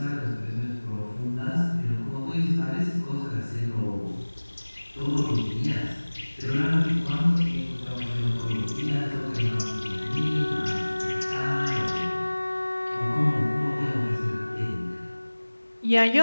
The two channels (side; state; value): both; inverted; correlation -1.00